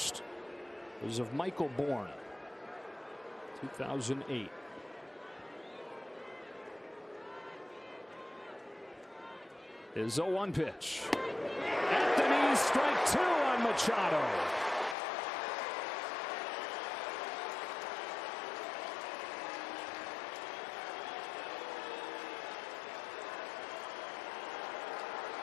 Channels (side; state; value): right; drops out; at 15.0 s